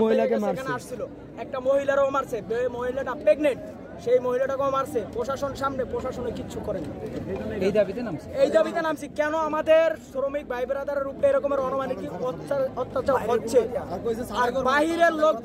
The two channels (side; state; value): both; identical; correlation 1.00